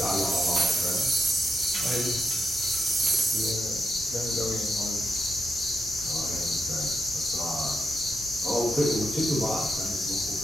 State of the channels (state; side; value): normal; both; correlation 0.84